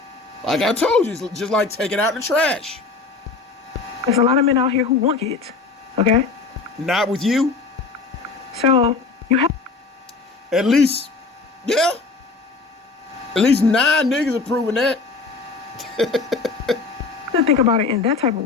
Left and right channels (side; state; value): right; quieter; 4.1 dB